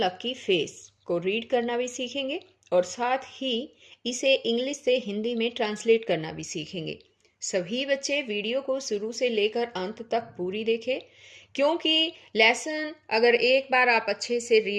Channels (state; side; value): identical; both; correlation 1.00